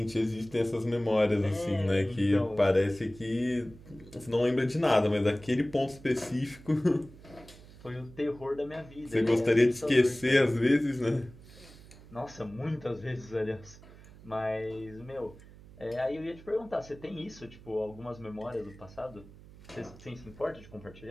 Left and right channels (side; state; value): right; noise; hum, 20 dB below the sound